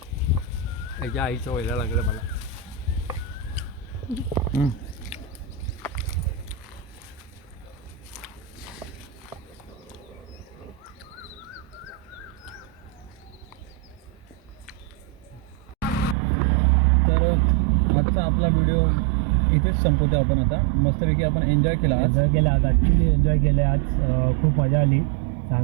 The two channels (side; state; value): left; drops out; at 16.2 s